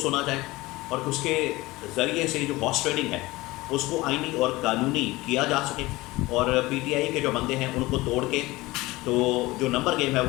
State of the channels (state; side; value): quieter; right; 20.2 dB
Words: सुना जाए और उसके ज़रिए से जो हॉर्स ट्रेडिंग है उसको आईनी और कानूनी किया जा सके और PTI के जो बंदे हैं उनको तोड़ के तो जो नंबर गेम है